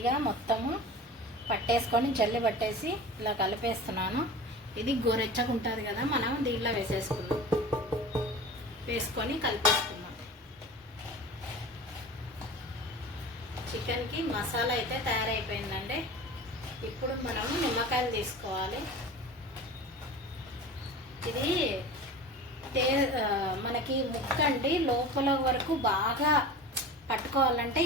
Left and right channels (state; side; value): normal; both; correlation 0.35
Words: మొత్తము పట్టేసుకొని జల్లి పట్టేసి ఇలా కలిపేస్తున్నాను. ఇది గోరెచ్చగా ఉంటుంది కదా, మనం దీంట్లో వేసుకొని కలిపేసుకుందాం. చికెన్కి మసాలా అయితే తయారైపోయిందండి. ఇప్పుడు మనం నిమ్మకాయలు తీసుకోవాలి. ఇది మనకి ముక్క అండి లోపల వరకు బాగా పట్టుకోవాలంటే